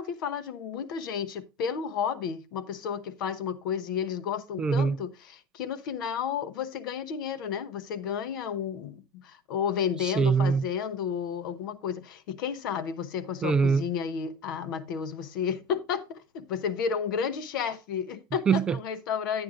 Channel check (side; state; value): both; normal; correlation 0.34